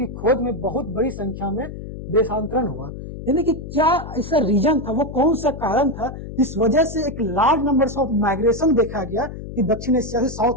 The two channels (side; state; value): left; noise; hum, 10 dB below the sound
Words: खोज में बहुत बड़ी संख्या में देशांतरण हुआ। यानी कि क्या ऐसा रीजन था, वो कौन सा कारण था जिस वजह से एक लार्ज नंबर ऑफ माइग्रेशन देखा गया कि दक्षिण एशिया से